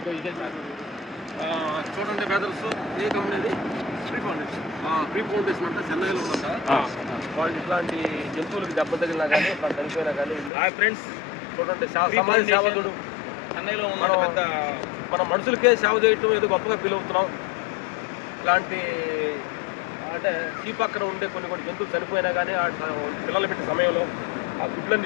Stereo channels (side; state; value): right; drops out; at 10.5 s